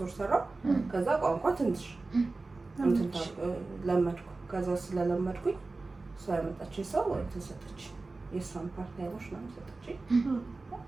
ወር ሰራው። ከዛ ቋንቋ ትንሽ እንትን ለመድኩ። ከዛ ስለለመድኩኝ እሷ ያመጣችኝ ሰው ተሰጠች። የሷን ፓርታይሞች ነው ሰጠችኝ።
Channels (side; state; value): left; quieter; 3.5 dB